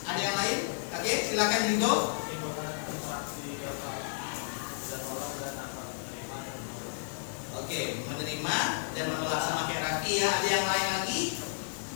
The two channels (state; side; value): silent; right; digital silence